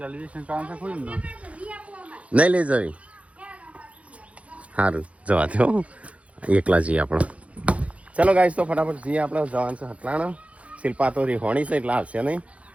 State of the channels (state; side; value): late; left; 0.064 ms